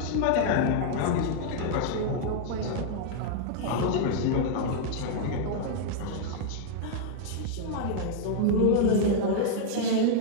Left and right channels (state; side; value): different; both; correlation -0.01